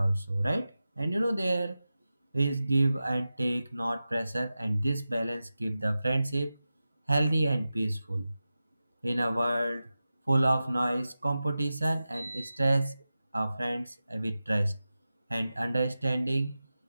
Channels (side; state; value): both; inverted; correlation -0.94